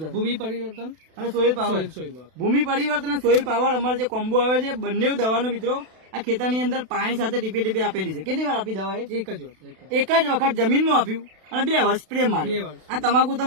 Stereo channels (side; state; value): left; late; 32 ms